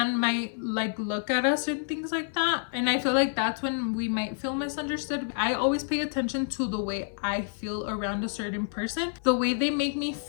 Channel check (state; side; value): silent; right; 59 dB below the other